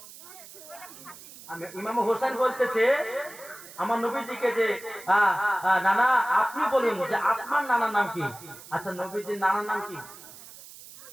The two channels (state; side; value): noise; right; hiss, 17 dB below the sound